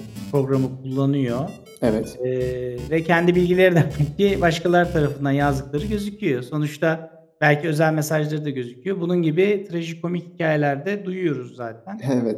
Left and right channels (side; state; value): both; identical; correlation 1.00